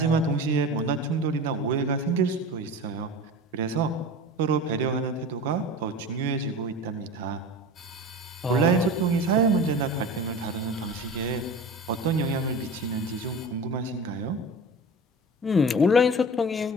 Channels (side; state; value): both; normal; correlation 0.33